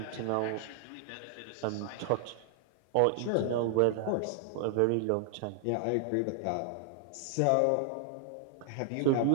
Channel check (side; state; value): both; different; correlation 0.00